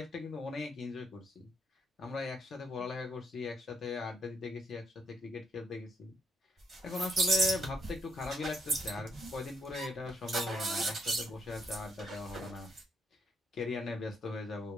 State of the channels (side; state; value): both; normal; correlation 0.74